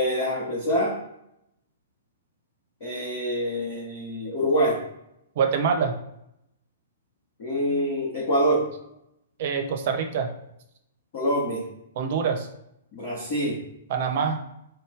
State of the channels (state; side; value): inverted; both; correlation -0.39